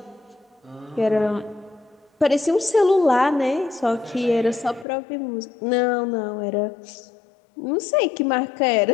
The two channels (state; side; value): drops out; right; at 4.9 s